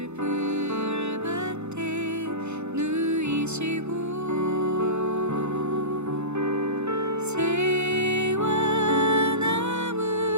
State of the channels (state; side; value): late; left; 0.82 ms